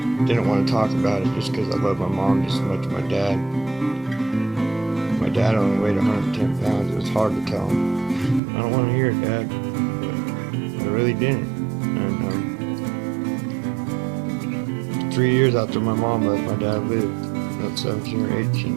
didn't want to talk about it just because I love my mom just as much as my dad. My dad only weighed 110 pounds. It was hard to tell him, I don't want to hear it, Dad, but I really didn't. And for 3 years after my mom left, my dad lived. Not 17 or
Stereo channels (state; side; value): drops out; left; at 8.4 s